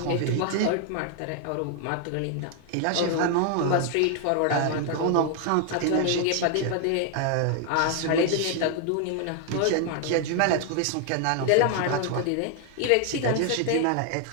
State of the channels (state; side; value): different; both; correlation 0.00